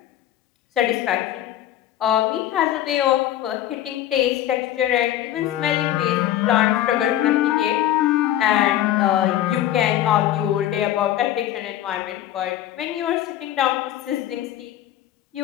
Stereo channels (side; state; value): right; quieter; 12.5 dB